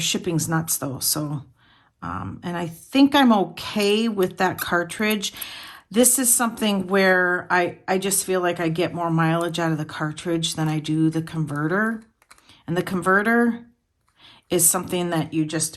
nuts though, so and I think I'm okay with that cartridge. This is something where I just feel like I get more mileage out of the cartridge than I do the converter. And the converter is something that you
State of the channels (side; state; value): both; identical; correlation 1.00